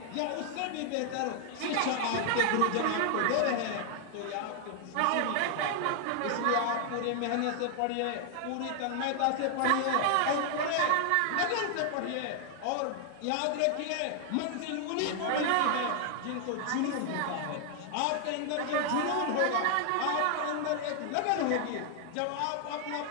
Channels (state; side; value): different; both; correlation 0.00